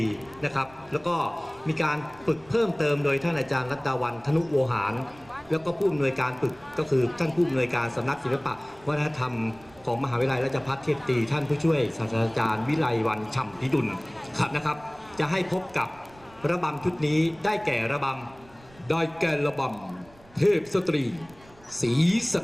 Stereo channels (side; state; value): right; noise; rumble, 25 dB below the sound